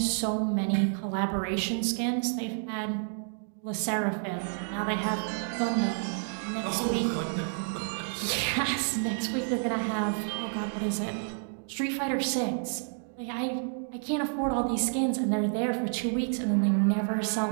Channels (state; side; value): silent; left; digital silence